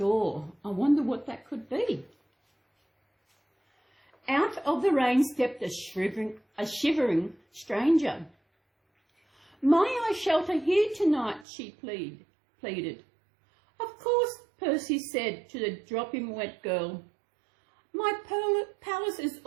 I wonder what that could be. Out of the rain stepped a shivering stranger. "May I shelter here tonight?" she pleaded. "Of course," Percy said to the dropping wet girl. "My palace is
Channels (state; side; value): drops out; left; at 11.5 s